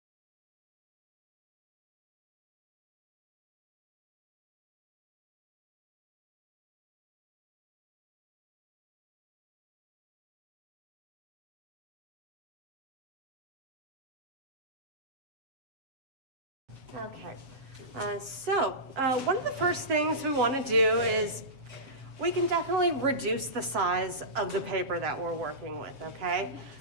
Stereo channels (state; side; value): late; left; 7.5 ms